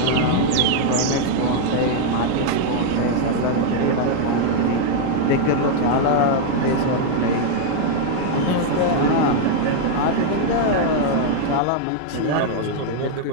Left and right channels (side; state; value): both; different; correlation 0.00